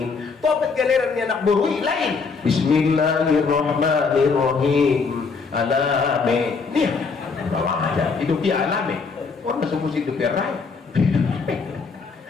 topeng galeran anak baru lain bismillahirrahmanirrahim alame nih bawa aja hidup dia alame orang semua hidup dia raya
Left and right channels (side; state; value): right; quieter; 4.9 dB